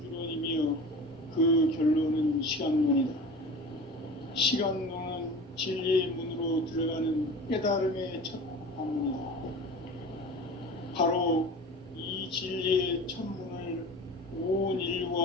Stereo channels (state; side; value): normal; both; correlation 0.36